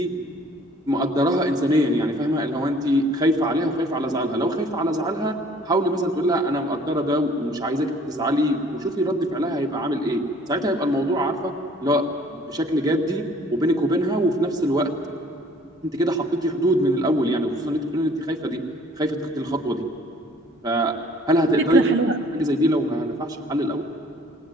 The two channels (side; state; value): both; normal; correlation 0.55